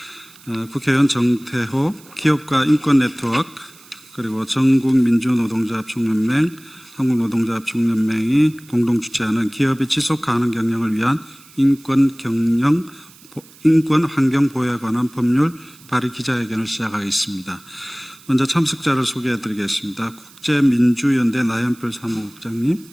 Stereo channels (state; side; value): noise; right; hiss, 24 dB below the sound